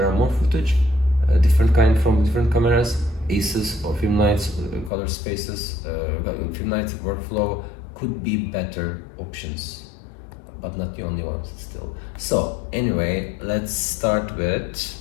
are more footage, different kind from different cameras, ACES or Filmlight's color spaces, Filmlight workflow could be better options, but not the only ones still. So anyway, let's start with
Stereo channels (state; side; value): drops out; right; at 4.9 s